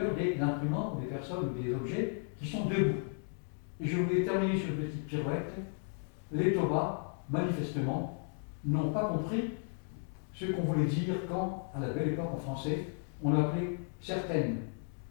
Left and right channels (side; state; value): right; silent; 55 dB below the other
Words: des imprimants, des personnes ou des objets qui sont debout. Et je voulais terminer sur une petite pirouette. Les Toba, manifestement, n'ont pas compris ce qu'on voulait dire quand, à la belle époque en français, on appelait certaines